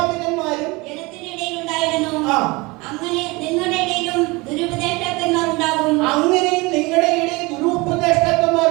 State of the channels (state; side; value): quieter; left; 24.3 dB